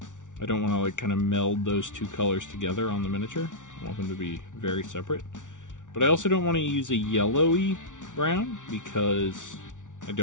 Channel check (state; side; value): late; right; 0.87 ms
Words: don't want to like kind of meld those two colors together on the miniature. I want them to be very separate. But I also don't want to use a yellowy brown, because I